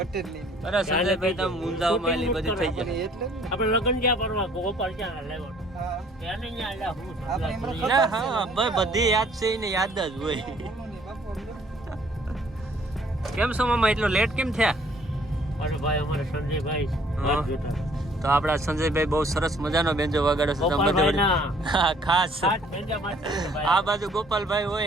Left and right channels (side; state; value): both; normal; correlation 0.59